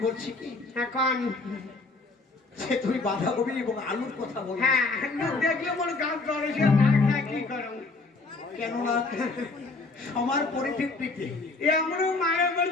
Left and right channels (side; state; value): right; quieter; 3.7 dB